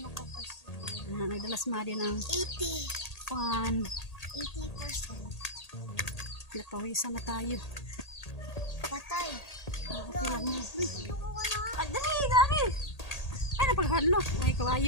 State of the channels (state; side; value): late; right; 1.8 ms